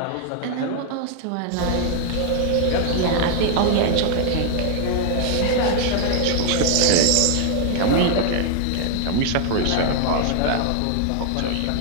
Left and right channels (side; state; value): both; different; correlation 0.00